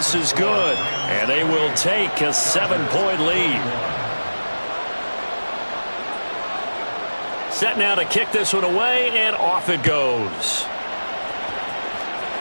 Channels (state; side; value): inverted; both; correlation -1.00